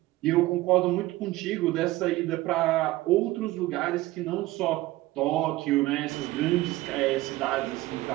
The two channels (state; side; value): quieter; left; 17.8 dB